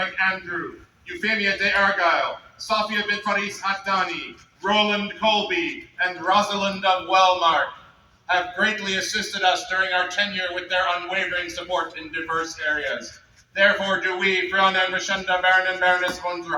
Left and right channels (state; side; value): identical; both; correlation 1.00